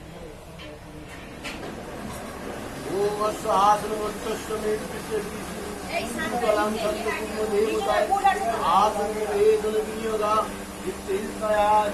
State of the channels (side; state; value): both; identical; correlation 1.00